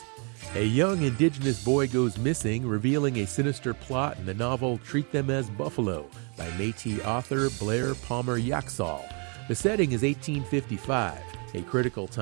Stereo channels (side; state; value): left; quieter; 36.0 dB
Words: A young indigenous boy goes missing, revealing a sinister plot in the novel Treat Them as Buffalo by Métis author Blair Yoxall. The setting is 1855, a critical